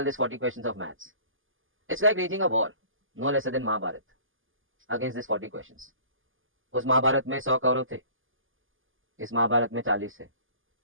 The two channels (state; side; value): late; left; 0.58 ms